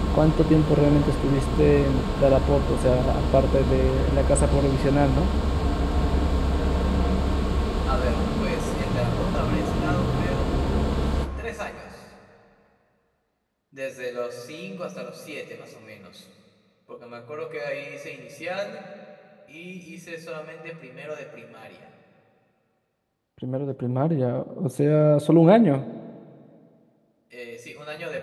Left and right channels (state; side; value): identical; both; correlation 1.00